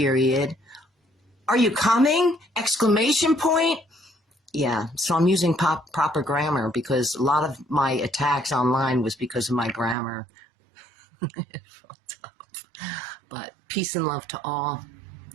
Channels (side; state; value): left; drops out; at 10.0 s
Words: Are you coming? Exclamation point. Yeah, so I'm using proper grammar because a lot of my attacks online was because of my grammar. But peace and love to all.